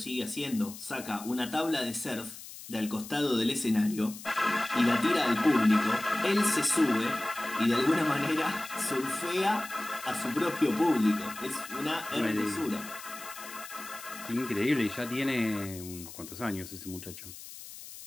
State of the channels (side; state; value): left; noise; hiss, 14 dB below the sound